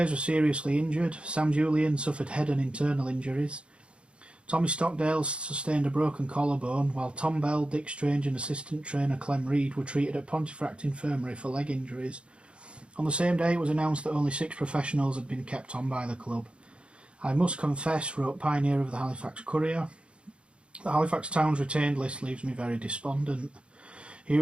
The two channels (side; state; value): left; late; 0.058 ms